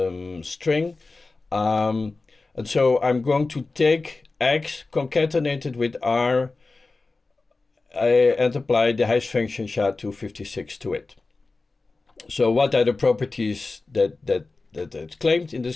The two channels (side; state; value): right; quieter; 3.6 dB